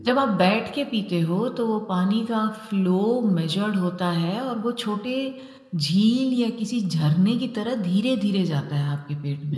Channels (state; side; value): identical; both; correlation 1.00